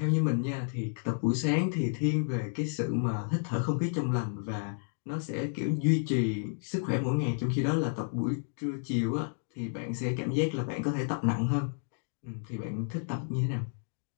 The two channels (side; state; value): right; silent; digital silence